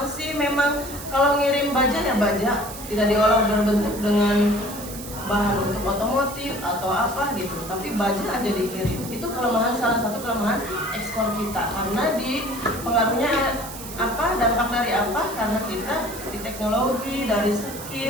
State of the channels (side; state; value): right; noise; hiss, 12 dB below the sound